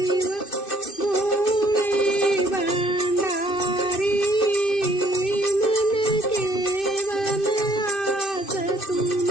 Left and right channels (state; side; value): late; right; 2.6 ms